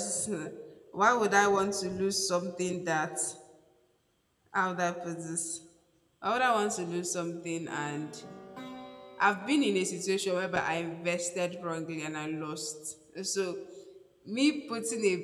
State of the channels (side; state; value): both; identical; correlation 1.00